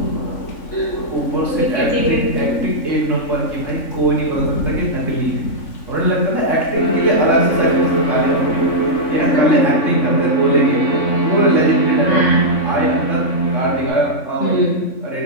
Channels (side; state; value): right; late; 3.6 ms